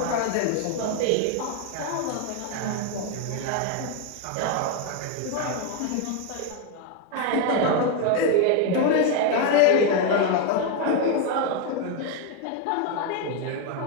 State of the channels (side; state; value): both; different; correlation 0.01